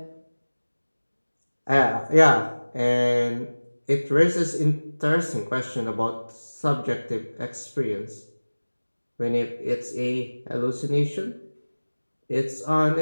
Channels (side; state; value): both; inverted; correlation -1.00